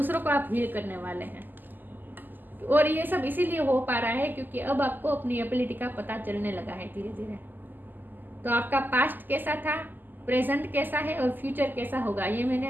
को आप हील करने वाले हैं। और ये सब इसीलिए हो पा रहा है क्योंकि अब आपको अपनी एबिलिटी का पता चलने लगा है धीरे धीरे। तो आपका पास्ट कैसा था, प्रेजेंट कैसा है और फ्यूचर कैसा होगा, ये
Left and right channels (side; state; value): left; late; 0.088 ms